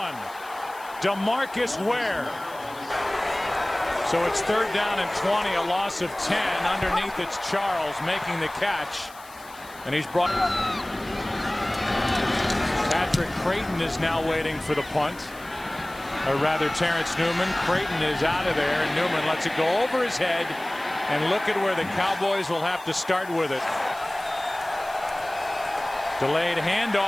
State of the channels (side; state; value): left; noise; hiss, 21 dB below the sound